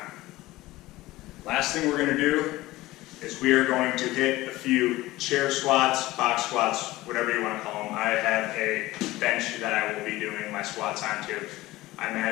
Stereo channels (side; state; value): right; quieter; 18.1 dB